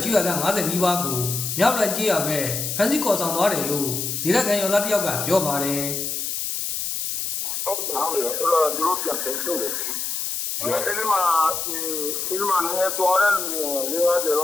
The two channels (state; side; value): noise; left; hiss, 3 dB below the sound